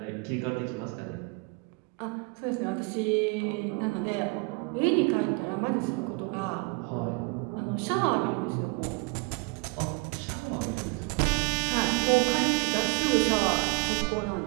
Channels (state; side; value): quieter; left; 29.5 dB